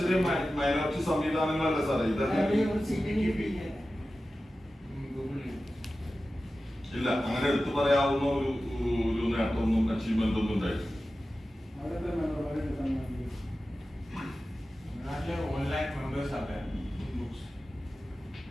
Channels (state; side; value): normal; both; correlation 0.94